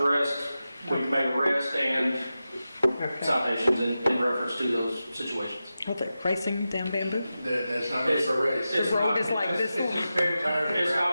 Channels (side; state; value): both; inverted; correlation -0.92